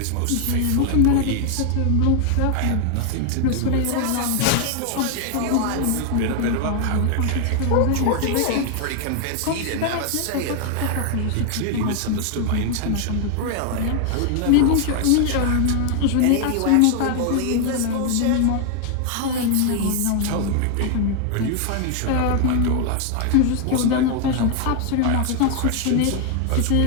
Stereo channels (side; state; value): both; different; correlation 0.00